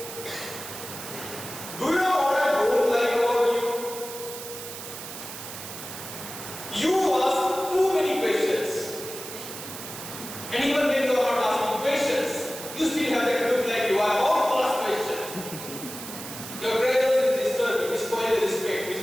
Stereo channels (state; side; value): noise; right; hiss, 10 dB below the sound